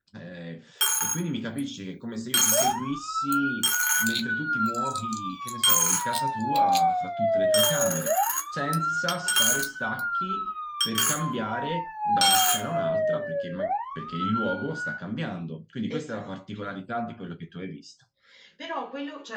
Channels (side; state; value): both; identical; correlation 1.00